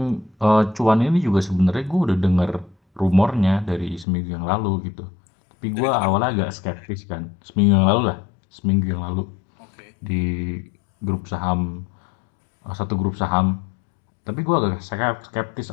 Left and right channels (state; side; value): drops out; right; at 4.0 s